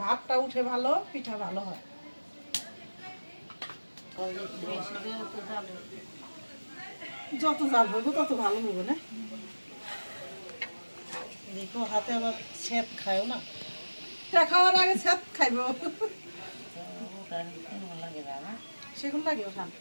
ভাতটা উঠে ভালো, পিঠা ভালো হয়। যত জাল হইব তত ভালো হইব না। দেখো হাতে আবার স্যাঁত খায়ও না, এটা খাওয়ার আগে স্যাঁত খাইব। সেগুলো লাগে ওঠান,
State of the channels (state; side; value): inverted; both; correlation -1.00